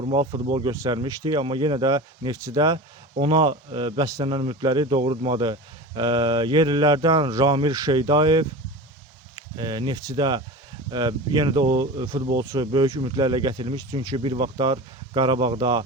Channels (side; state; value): both; normal; correlation 0.31